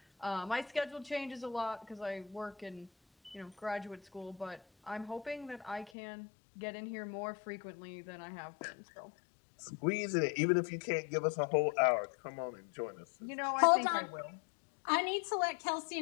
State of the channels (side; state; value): right; drops out; at 5.9 s